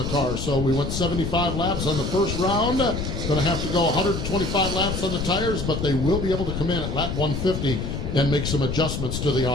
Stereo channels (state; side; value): noise; left; rumble, 4 dB below the sound